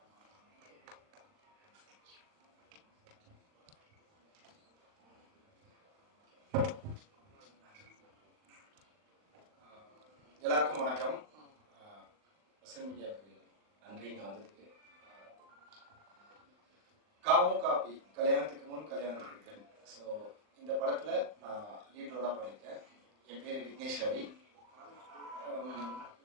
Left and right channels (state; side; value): late; left; 39 ms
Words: எல்லாருக்கும் வணக்கம். மீடியாவுக்கு நன்றி இங்கே வந்ததுக்கு. காமு காப்பி, கல்யாணத்துக்கு முன் கல்யாணத்துக்கு பின். ஸோ இந்த படத்தில் நான் லீட் ரோலாக பண்ணியிருக்கேன். என் பேர் விக்னேஷ் ரவி.